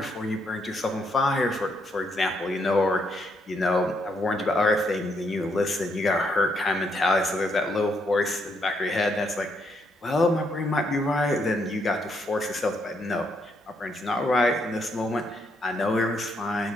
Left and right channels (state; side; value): normal; both; correlation 0.75